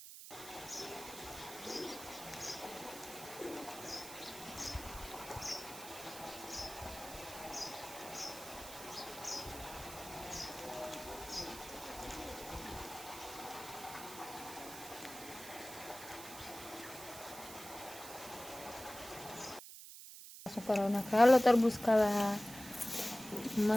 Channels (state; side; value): noise; right; hiss, 13 dB below the sound